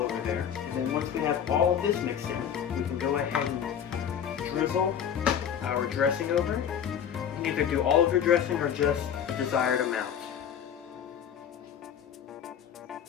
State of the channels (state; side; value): quieter; right; 8.6 dB